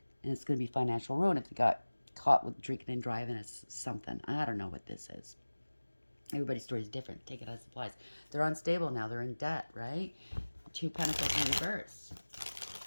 And it's going to be financial ruin if they got caught with drinking and driving as something. I don't know what this is. Everybody's story is different. Take it as it applies. They're unstable now. They're in debt, right? 2 Pentacles in reverse.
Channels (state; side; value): inverted; both; correlation -1.00